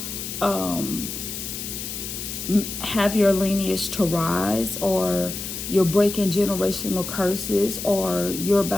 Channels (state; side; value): noise; left; hiss, 7 dB below the sound